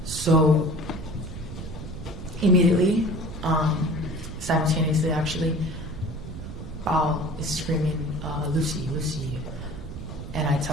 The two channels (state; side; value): noise; right; rumble, 9 dB below the sound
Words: So immediately, simultaneously actually, Val is screaming, Lucy, Lucy. And I